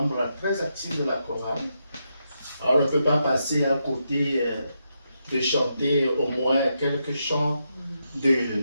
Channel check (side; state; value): both; inverted; correlation -0.83